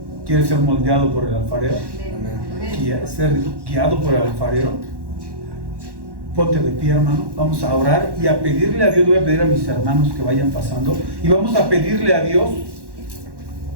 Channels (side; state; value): left; late; 1.1 ms